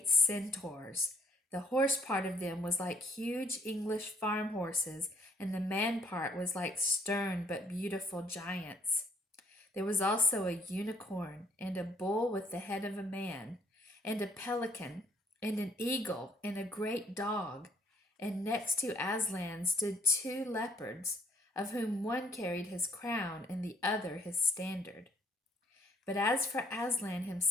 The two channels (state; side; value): normal; both; correlation 0.64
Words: centaurs. The horse part of them was like huge English farm horses, and the man part was like stern but beautiful giants. There was also a unicorn, and a bull with the head of a man, and a pelican, and an eagle, and a great dog. And next to Aslan stood 2 leopards, of whom one carried his crown and the other his standard. But as for Aslan